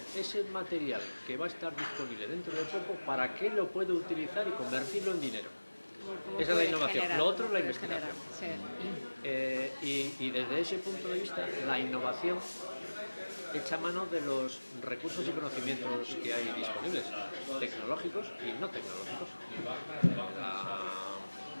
ese material que va a estar disponible dentro de poco, ¿para qué lo puedo utilizar y convertirlo en dinero? Esa es la innovación. Lo otro es la investigación. Y desde ese punto de vista, la innovación echa mano de los recursos y conocimientos que hay disponibles, tecnológicos y no tecnológicos.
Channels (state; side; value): inverted; both; correlation -1.00